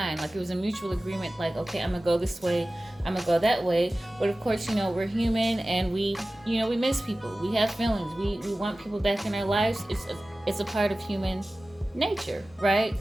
Like, it was a mutual agreement, like, okay, I'm gonna go this way, I'm gonna go that way. But of course, we're human, and we miss people. We have feelings. We want people back in our lives. It's a part of human nature, right?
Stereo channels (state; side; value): normal; both; correlation 0.96